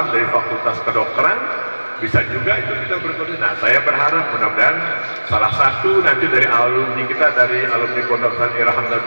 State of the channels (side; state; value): both; inverted; correlation -1.00